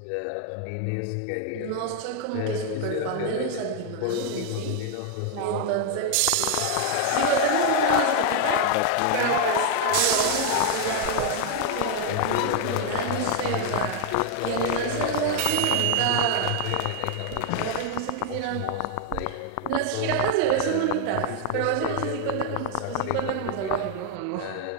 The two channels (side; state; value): both; different; correlation 0.00